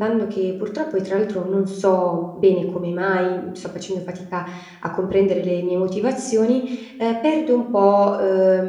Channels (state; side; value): identical; both; correlation 1.00